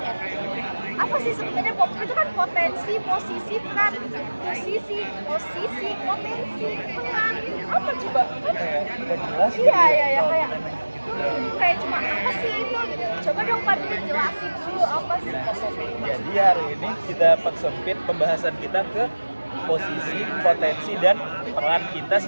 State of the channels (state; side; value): inverted; both; correlation -1.00